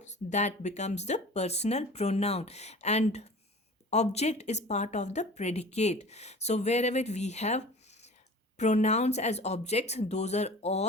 that becomes the personal pronoun, and object is part of the predicate. So wherever we have pronouns as objects, those are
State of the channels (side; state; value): both; normal; correlation 0.41